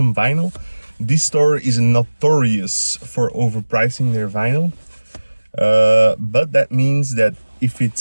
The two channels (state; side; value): inverted; both; correlation -1.00